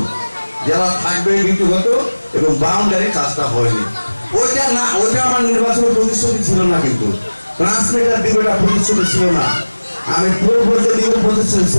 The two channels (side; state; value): both; inverted; correlation -1.00